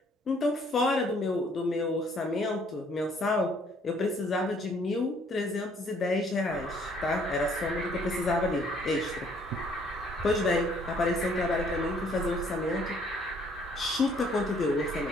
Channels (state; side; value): normal; both; correlation 0.62